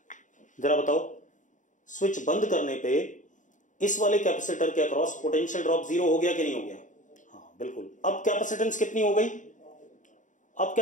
जरा बताओ। स्विच बंद करने पे इस वाले कैपेसिटर के अक्रॉस पोटेंशियल ड्रॉप 0 हो गया कि नहीं हो गया, हाँ बिल्कुल। अब कैपेसिटेंस कितनी हो गई, अब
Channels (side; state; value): right; late; 0.37 ms